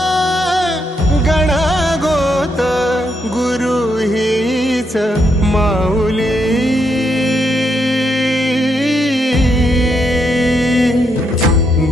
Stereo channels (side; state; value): both; normal; correlation 0.78